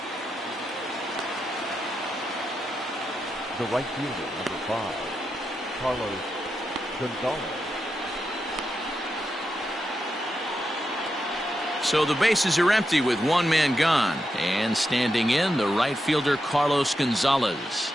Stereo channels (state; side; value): normal; both; correlation 0.86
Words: The right fielder, number 5, Carlos Gonzalez. So the bases are empty with one man gone. And standing in, the right fielder Carlos Gonzalez.